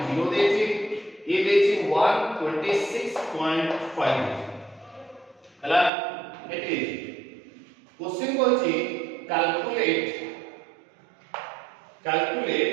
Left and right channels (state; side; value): drops out; left; at 5.9 s